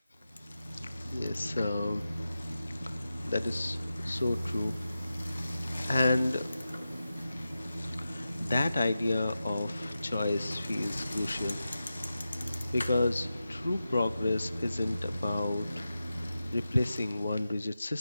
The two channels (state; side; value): inverted; both; correlation -0.93